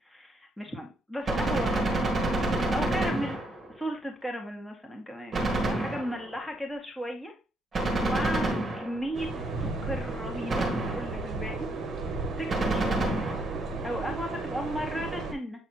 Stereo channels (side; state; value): both; normal; correlation 0.74